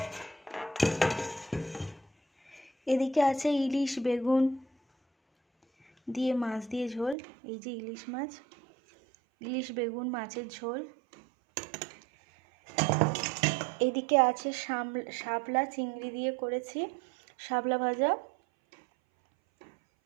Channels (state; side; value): drops out; left; at 7.2 s